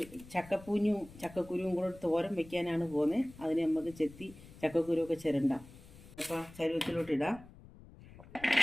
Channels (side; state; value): left; noise; rumble, 19 dB below the sound